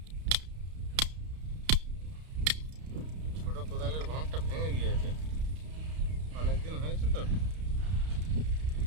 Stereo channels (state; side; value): late; left; 32 ms